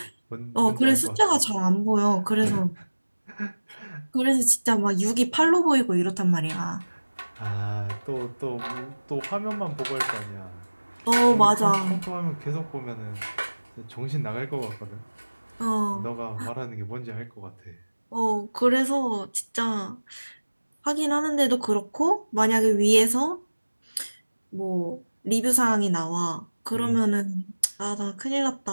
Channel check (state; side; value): inverted; both; correlation -1.00